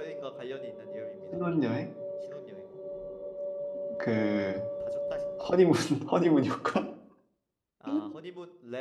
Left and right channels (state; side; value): identical; both; correlation 1.00